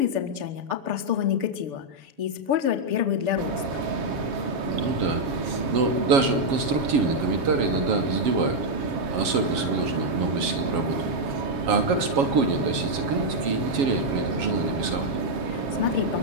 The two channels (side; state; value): left; late; 7.3 ms